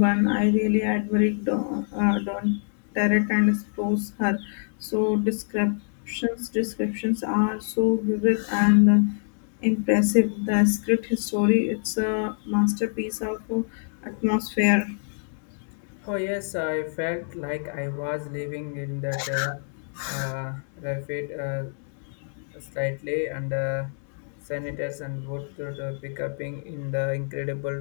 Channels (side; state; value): right; silent; digital silence